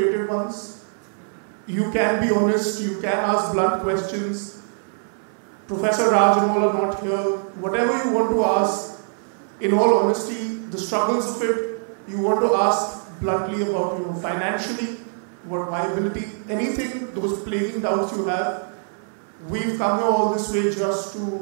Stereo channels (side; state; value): left; silent; 60 dB below the other